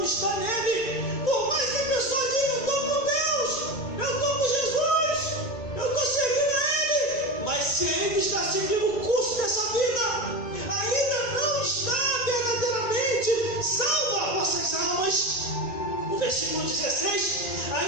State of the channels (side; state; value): right; late; 1.9 ms